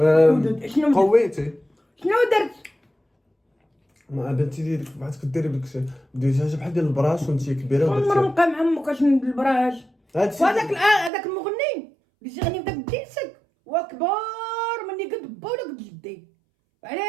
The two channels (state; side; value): drops out; left; at 11.1 s